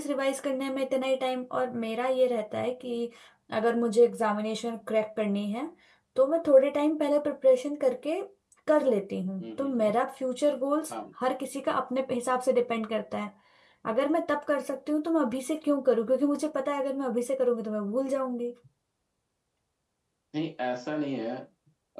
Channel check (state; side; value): identical; both; correlation 1.00